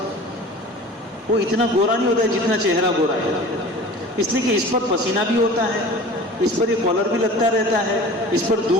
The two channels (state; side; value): normal; both; correlation 0.41